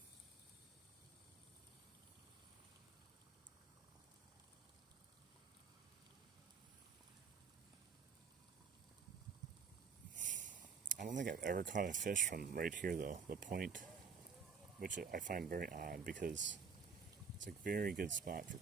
I don't think I've ever caught a fish from right here though, the point, which I find very odd because it's a very good spot for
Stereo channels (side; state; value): left; quieter; 5.9 dB